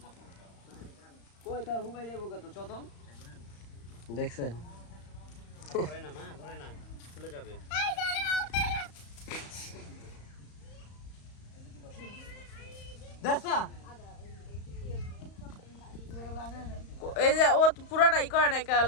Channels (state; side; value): late; right; 35 ms